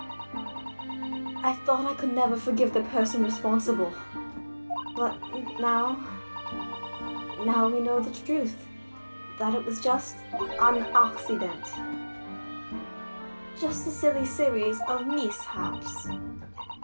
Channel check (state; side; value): inverted; both; correlation -1.00